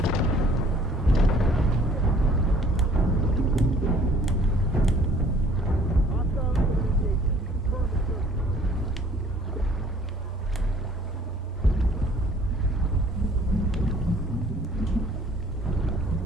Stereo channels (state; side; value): normal; both; correlation 0.55